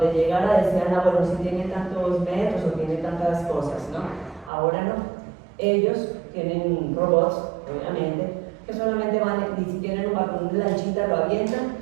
llegara decían, ah, bueno, si tiene tantos metros o tiene tantas cosas, ¿no? Ahora no. Ellos tienen robots, obviamente, que solamente van, y si tienen un balcón de lanchita, lo avientan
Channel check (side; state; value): left; drops out; at 4.5 s